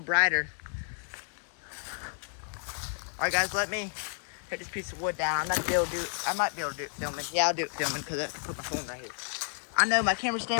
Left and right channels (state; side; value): silent; right; 57 dB below the other